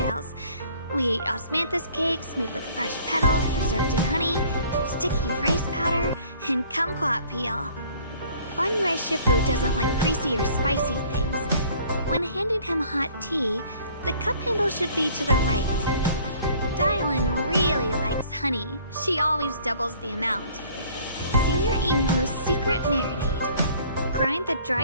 We ate osmanthus cakes made with fresh petals preserved in honey, sticky rice powder, and kumquat peel. Banyue Shifu doesn't like greasy or spicy things. When handing him hot tea, the cup handle should be to the right. Dylan really likes honey. She always doubles the amount. Senior Inghu's secret marinade. Grind the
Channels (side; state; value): both; inverted; correlation -0.54